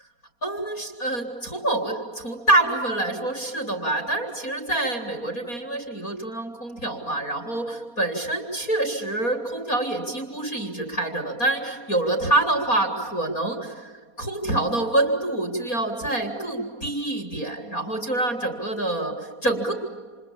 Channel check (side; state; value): right; late; 4.2 ms